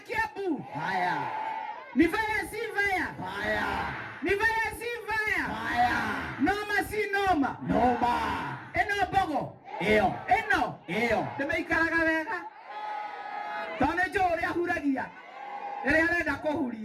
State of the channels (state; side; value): identical; both; correlation 1.00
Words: Haya ni vaya si vaya, ni vaya si vaya, noma si noma, eno bogo eno nimeikaraga wega tone jore ahuragia ere arenda